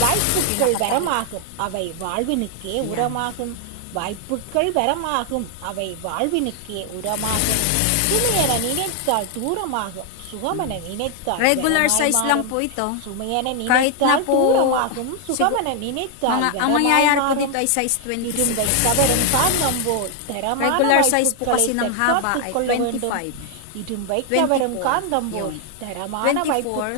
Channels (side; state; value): both; different; correlation 0.00